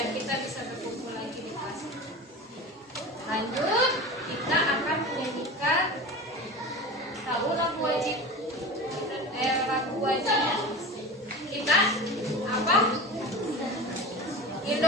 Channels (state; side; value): normal; both; correlation 0.31